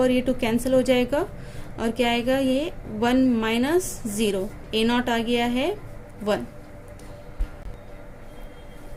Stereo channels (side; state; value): both; identical; correlation 1.00